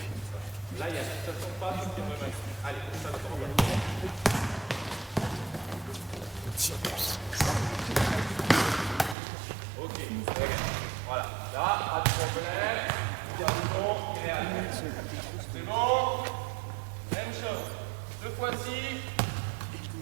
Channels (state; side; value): drops out; left; at 9.2 s